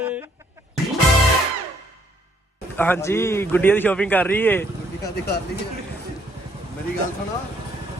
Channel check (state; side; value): normal; both; correlation 0.67